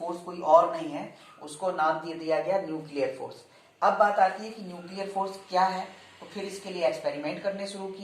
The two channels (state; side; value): identical; both; correlation 1.00